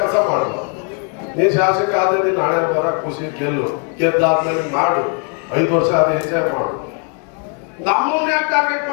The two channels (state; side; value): quieter; right; 37.7 dB